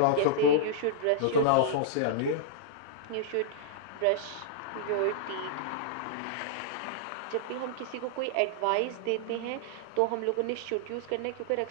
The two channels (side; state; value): both; different; correlation -0.02